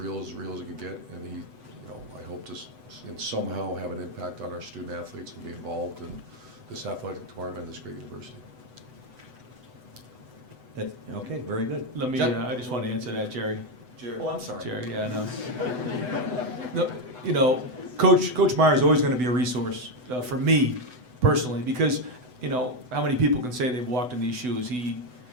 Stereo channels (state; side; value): late; left; 8.0 ms